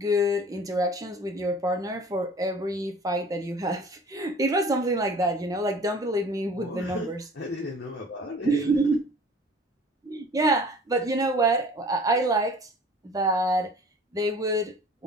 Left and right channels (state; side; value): normal; both; correlation 0.47